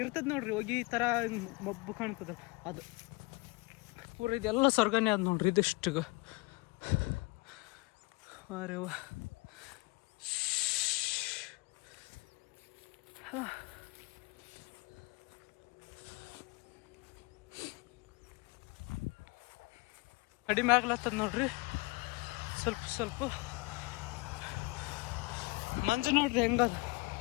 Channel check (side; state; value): right; quieter; 26.1 dB